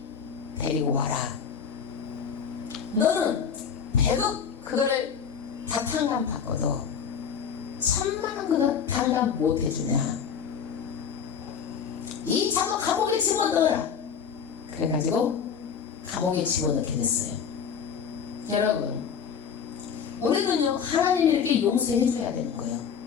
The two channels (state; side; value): quieter; right; 7.1 dB